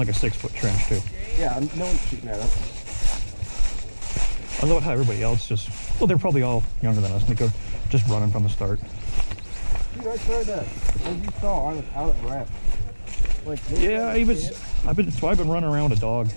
a 6-foot trench too. Yeah, no one's shooting at us. I love how everybody else just, well, they're probably all younger than us, and they go just running from the start. Dude, I tried that. As you saw, I was out of breath. Like, yeah, I've been running around with a dog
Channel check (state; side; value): inverted; both; correlation -1.00